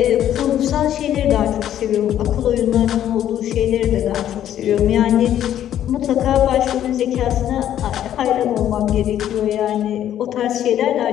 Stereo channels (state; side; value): quieter; right; 11.1 dB